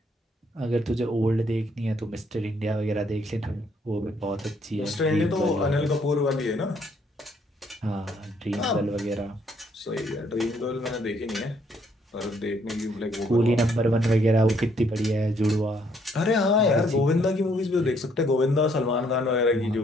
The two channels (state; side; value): normal; both; correlation 0.68